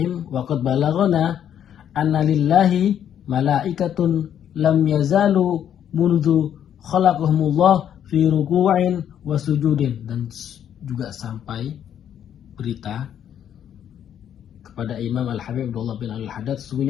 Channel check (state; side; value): quieter; right; 9.6 dB